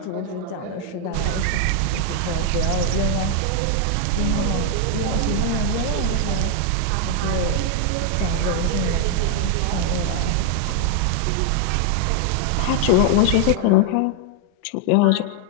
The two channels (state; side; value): different; both; correlation 0.00